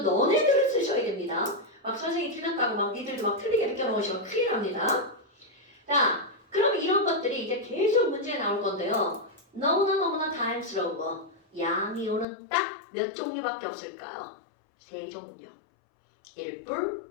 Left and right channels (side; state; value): right; drops out; at 12.2 s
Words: 너네들은 쓰셔야 됩니다. 막 선생님이 틀렸다고 막 니들도 막 틀리게 느껴놓으시면 큰일 납니다. 자, 그럼 이런 것들이 이제 계속 문제에 나올 건데요. 너무나 다양스러운 거. 양이온은 딱 몇 종류밖에 없을까요? 3종류. 1뿔,